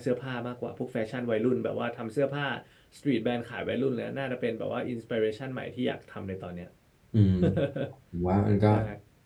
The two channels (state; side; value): identical; both; correlation 1.00